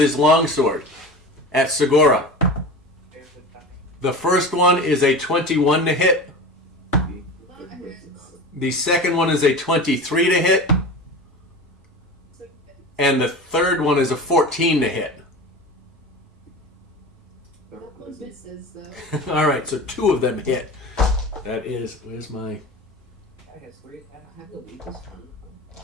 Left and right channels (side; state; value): both; normal; correlation 0.31